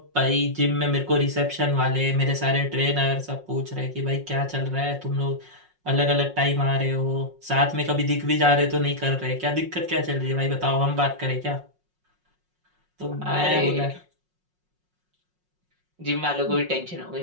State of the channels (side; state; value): left; late; 5.5 ms